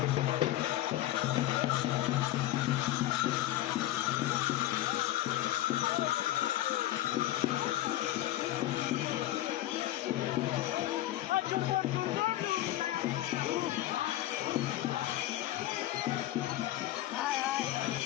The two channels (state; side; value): quieter; right; 14.8 dB